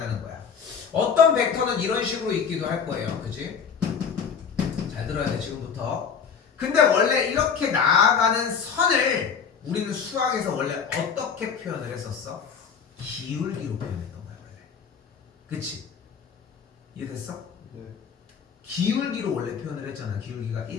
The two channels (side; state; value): right; quieter; 6.7 dB